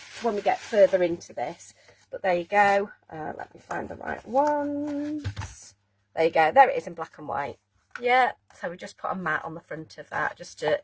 when we get further into this. But there you go. Let me find the right ones. There you go. There it is in black and white. Yeah, so we just put a mat on the front of that just to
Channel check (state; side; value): identical; both; correlation 1.00